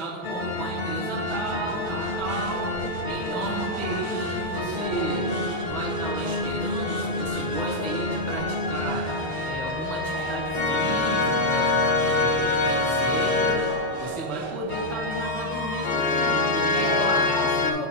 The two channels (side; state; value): both; normal; correlation -0.02